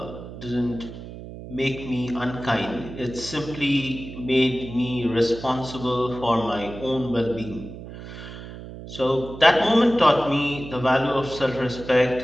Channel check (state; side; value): noise; right; hum, 12 dB below the sound